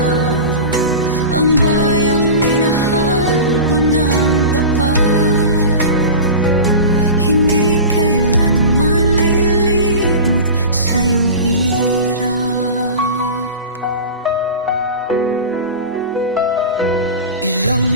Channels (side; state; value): both; inverted; correlation -0.31